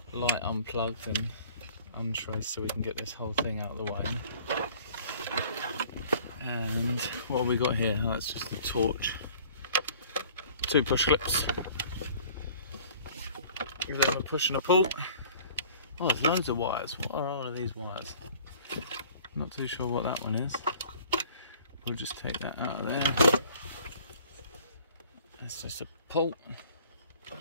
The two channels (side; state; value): both; inverted; correlation -0.51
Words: light unplugged and untraced so we can get this whole thing out of the way. And what have we got here? Oh, that's just the torch. 2 push clips. Give them a push and a pull. Oh, there's loads of wires. What are all of these wires? I'm not too sure what that one is. We'll just take that out of there. That's just a pull.